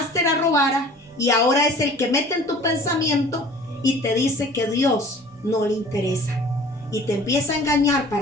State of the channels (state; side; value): normal; both; correlation 0.47